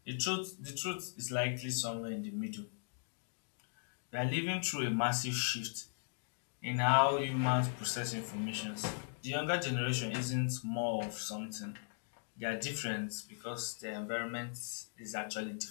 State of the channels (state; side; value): silent; right; digital silence